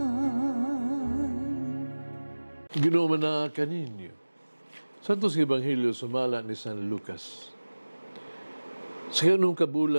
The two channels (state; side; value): inverted; both; correlation -1.00